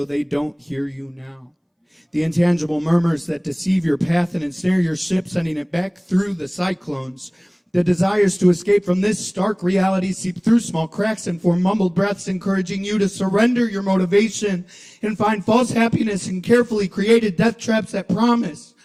they don't hear you now. The intangible murmurs that deceive your path and ensnare your ship, sending it back through the cyclones. The desires to escape from this stark reality seep through small cracks and form mumbled breaths, encouraging you to surrender your motivation and find false happiness in carefully created death traps that promise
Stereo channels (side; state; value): both; identical; correlation 1.00